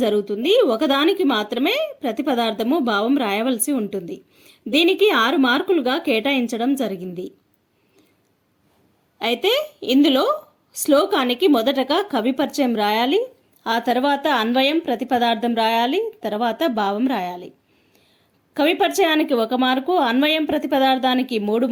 జరుగుతుంది. ఒకదానికి మాత్రమే ప్రతిపదార్థము భావం రాయవలసి ఉంటుంది. దీనికి 6 మార్కులుగా కేటాయించడం జరిగింది. అయితే ఇందులో శ్లోకానికి మొదటగా కవి పరిచయం రాయాలి, ఆ తర్వాత అన్వయం ప్రతిపదార్థం రాయాలి, తర్వాత భావం రాయాలి. కవి పరిచయానికి 1 మార్కు, అన్వయం ప్రతిపదార్థానికి 3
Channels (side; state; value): both; identical; correlation 1.00